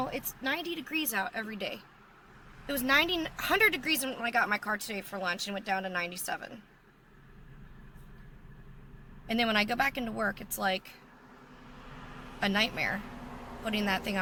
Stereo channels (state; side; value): identical; both; correlation 1.00